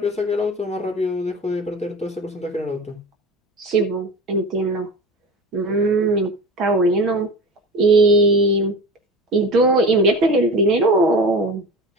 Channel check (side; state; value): both; normal; correlation 0.32